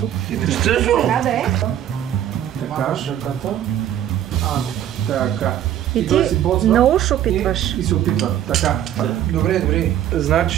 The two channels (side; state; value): left; quieter; 11.1 dB